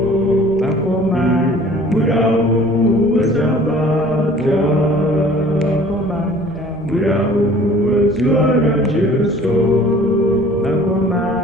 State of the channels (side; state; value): right; noise; rumble, 24 dB below the sound